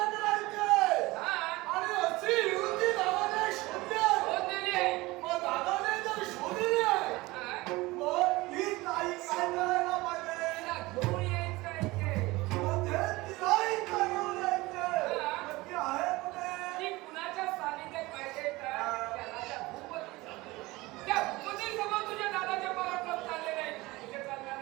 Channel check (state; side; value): quieter; left; 20.9 dB